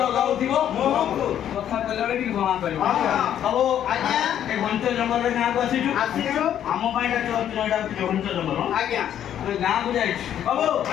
ଗାଉଥିବ ମୁହଁକୁ, କଥା କହିଲା ବେଳେ ଟିକେ ଜଣା କରିବ। ସବୁ ଏ ଘଞ୍ଚ ଜଙ୍ଗଲରେ ଗାଁକୁ ଆସିଛୁ। ଆମ ପାଇଁ ଏଇଟା ଘଞ୍ଚ ଜଙ୍ଗଲ। ଗାଁକୁ ଯାଇଛି ବାବୁ,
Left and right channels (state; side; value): quieter; right; 10.3 dB